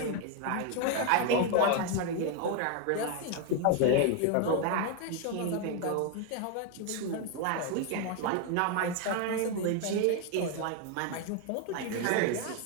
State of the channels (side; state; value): both; different; correlation 0.01